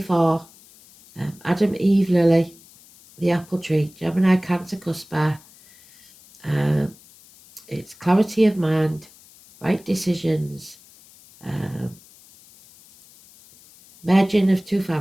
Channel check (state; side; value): noise; left; hiss, 25 dB below the sound